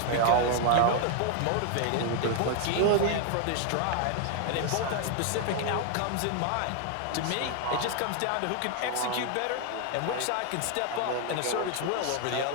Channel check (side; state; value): both; different; correlation 0.00